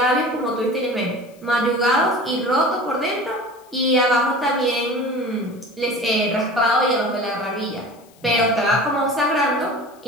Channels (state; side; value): noise; left; hiss, 29 dB below the sound